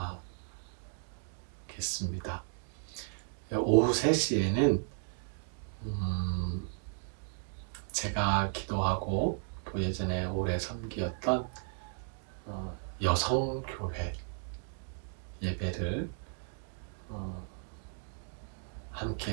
정하겠습니다. 오후 3시에는 제가 기도하고 또 예전에 오래 섬기었던 여성교회 예배를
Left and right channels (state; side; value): silent; left; 55 dB below the other